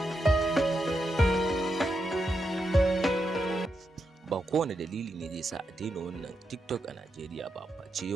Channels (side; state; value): both; normal; correlation 0.84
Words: Ba kowane dalili ne zai sa a daina wannan TikTok a Najeriya ba, face